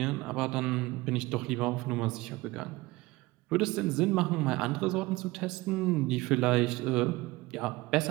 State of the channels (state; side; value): quieter; left; 20.8 dB